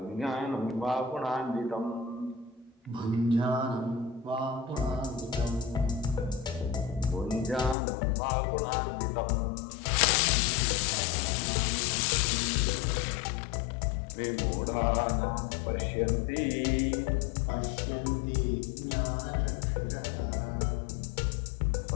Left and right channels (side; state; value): right; drops out; at 7.8 s